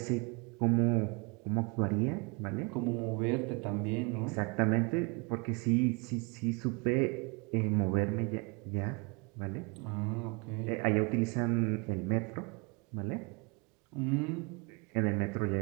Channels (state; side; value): quieter; left; 30.5 dB